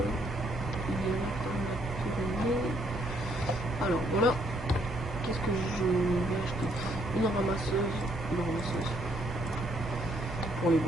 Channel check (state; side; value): normal; both; correlation 0.70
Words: Alors voilà. Qu'est-ce que je vais acheter? Une ramasseuse pour les